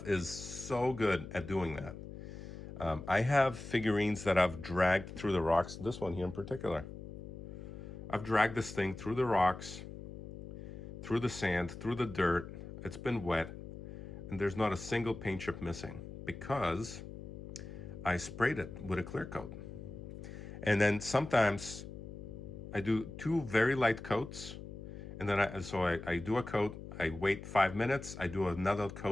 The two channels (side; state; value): left; noise; hum, 11 dB below the sound